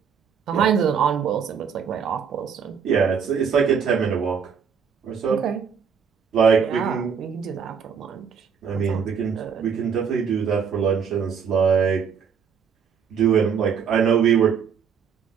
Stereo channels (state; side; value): quieter; left; 6.8 dB